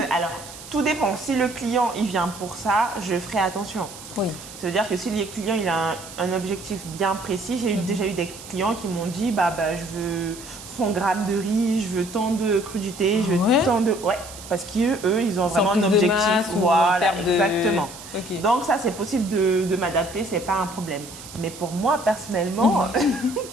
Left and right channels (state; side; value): noise; right; hiss, 15 dB below the sound